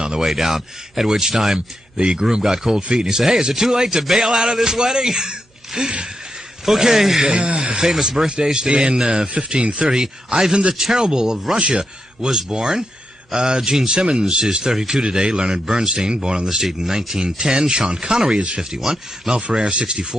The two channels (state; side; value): normal; both; correlation 0.85